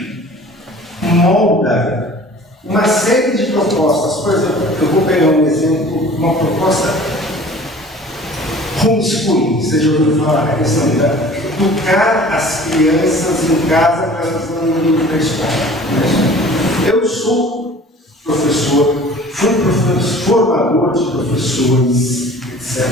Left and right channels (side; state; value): both; normal; correlation 0.46